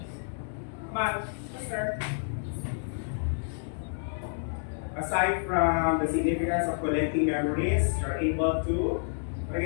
Come on, sir. Aside from the significance of collecting memories, you're able to, what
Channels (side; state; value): right; silent; digital silence